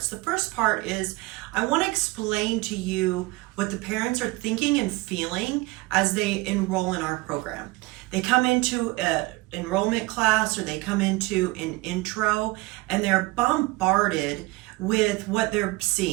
The first part is I want to explain to you what the parents are thinking and feeling as they enroll in our program. They come into an enrollment class or they come into an intro and they're bombarded with what they're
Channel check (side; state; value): left; quieter; 22.0 dB